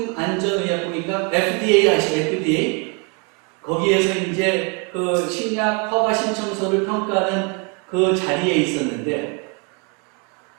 FDA 아시죠? FDA 거기에서 이제 그 식약 허가 신청서를 평가하는 그 자리에 있었는데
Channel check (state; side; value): quieter; left; 33.1 dB